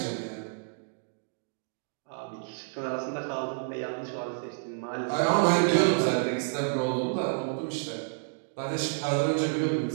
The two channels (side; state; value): left; silent; digital silence